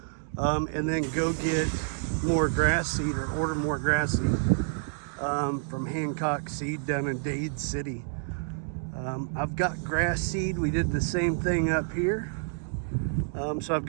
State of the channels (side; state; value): left; silent; digital silence